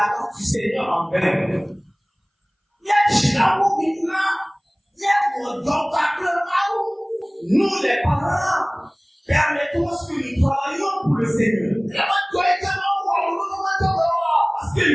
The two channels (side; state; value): both; identical; correlation 1.00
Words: grâce du Seigneur en vain. Nous, les parents, permettons que nous travaillions pour le Seigneur. Parce que